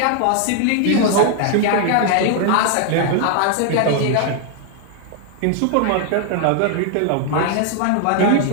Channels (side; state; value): both; different; correlation 0.00